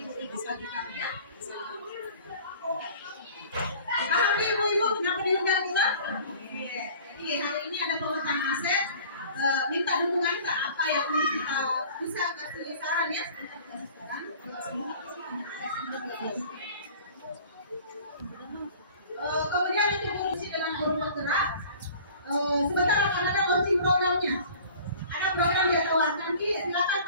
ibu bagi kami ya. Paham ibu-ibu kenapa diundang kita? Jadi hari ini ada pemetaan aset, minta dukungan ke apa yang kita bisa kasih saran ya. Kasih saran. Kemudian untuk fungsi dengan guru penggerak. Sebentar akan ada launching programnya. Ada program yang tawarkan, silakan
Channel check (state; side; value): inverted; both; correlation -0.46